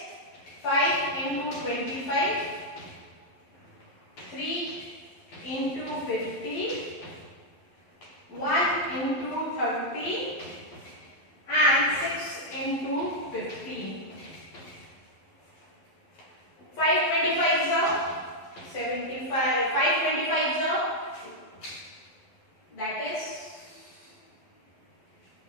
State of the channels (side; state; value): right; late; 11 ms